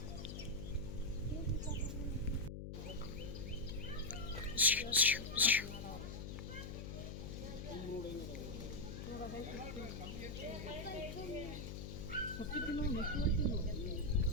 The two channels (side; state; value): left; noise; hum, 7 dB below the sound